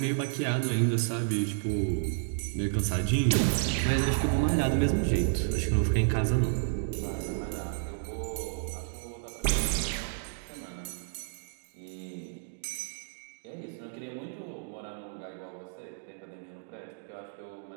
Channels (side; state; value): left; silent; digital silence